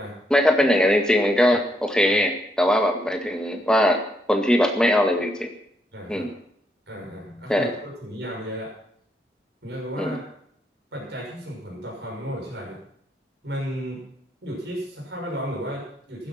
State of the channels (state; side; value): normal; both; correlation 0.76